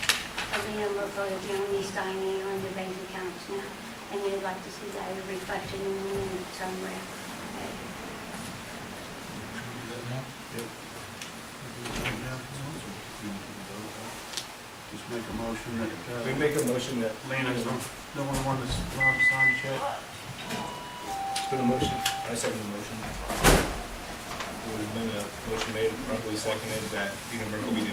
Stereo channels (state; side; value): identical; both; correlation 1.00